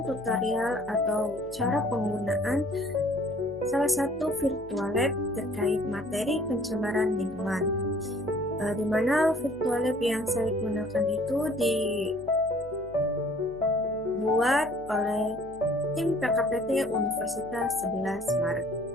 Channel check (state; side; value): noise; left; hum, 22 dB below the sound